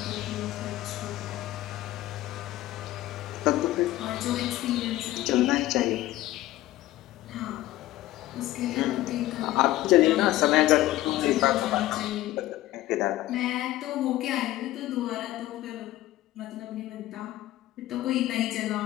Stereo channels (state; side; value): quieter; right; 15.8 dB